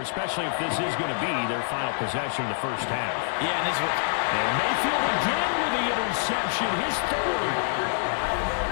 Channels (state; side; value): silent; right; digital silence